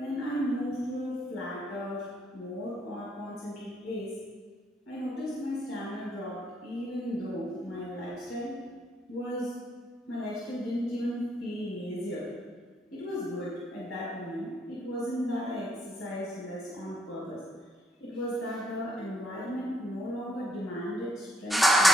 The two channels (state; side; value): normal; both; correlation 0.70